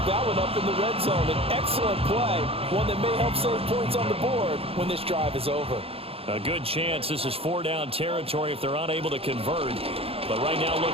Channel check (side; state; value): left; late; 0.28 ms